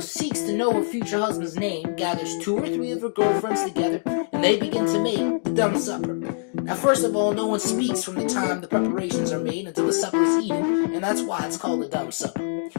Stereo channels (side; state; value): right; silent; digital silence